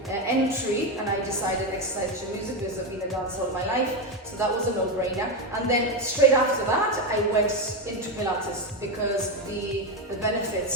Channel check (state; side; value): normal; both; correlation 0.11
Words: entry, and I decided exercise to music because I've been a dancer all my life, so that was a no-brainer. And then straight after that, I went into Pilates because the